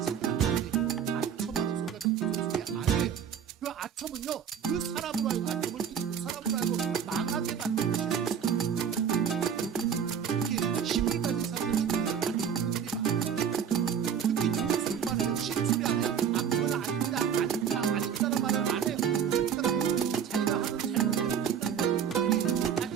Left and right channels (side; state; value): left; quieter; 7.9 dB